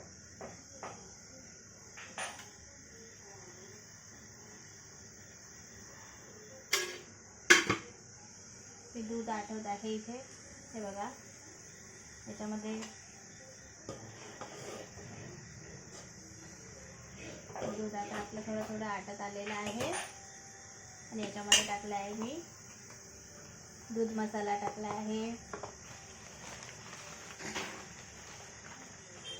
हे दूध आटवत आहे इथे, हे बघा. याच्यामध्ये दूध आता आपलं थोडं थोडं आटत आलेलं आहे आणि याच्यामध्ये टाकलं आहे मी दूध मसाला टाकला आहे,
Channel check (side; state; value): both; identical; correlation 1.00